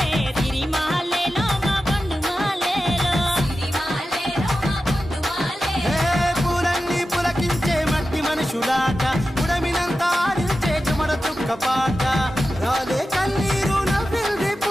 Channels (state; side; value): normal; both; correlation 0.93